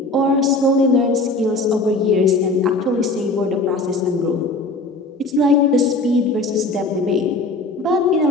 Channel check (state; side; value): quieter; right; 3.1 dB